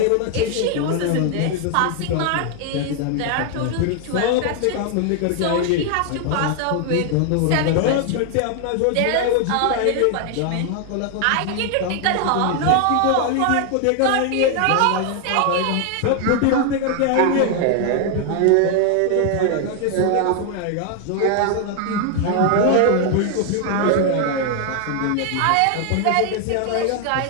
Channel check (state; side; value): different; both; correlation 0.00